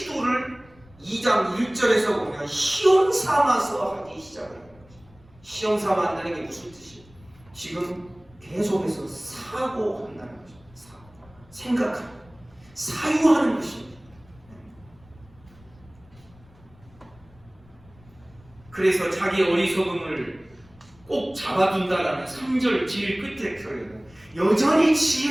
2장 1절에서 보면 시험 삼아서 하기 시작을 해요. 시험 삼아 한다는 게 무슨 뜻이에요? 지금 계속해서 사고한다는 거죠. 생각하는, 사유하는 것입니다. 그래서 자기 어리석음을 꼭 잡아둔다라는 3절 제일 끝에 표현은 여전히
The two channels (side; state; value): left; noise; rumble, 26 dB below the sound